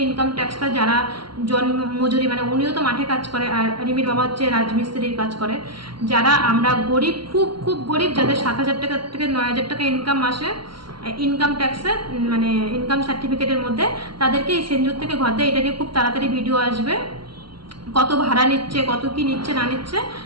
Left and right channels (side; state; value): left; late; 0.73 ms